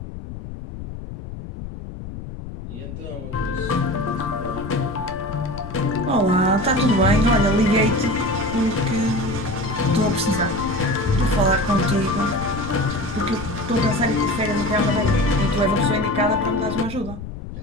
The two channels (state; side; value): noise; left; rumble, 10 dB below the sound